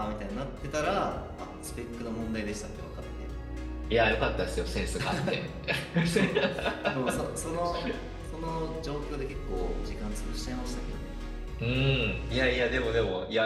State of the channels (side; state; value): both; identical; correlation 1.00